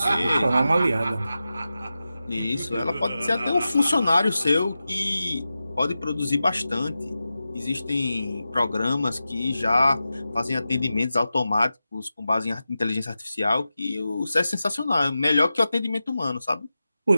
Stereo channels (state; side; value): inverted; both; correlation -0.93